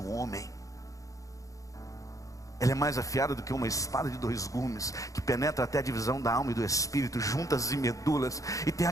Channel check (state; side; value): late; right; 0.16 ms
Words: homem. Ela é mais afiada do que uma espada de 2 gumes, que penetra até a divisão da alma e do espírito, juntas e medulas, e tem